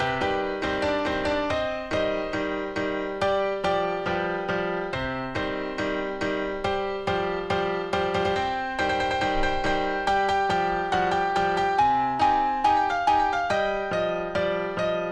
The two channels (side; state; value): both; identical; correlation 1.00